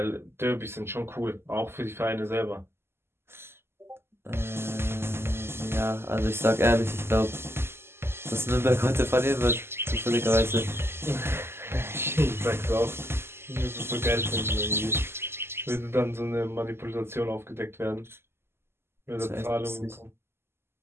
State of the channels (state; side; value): late; left; 0.12 ms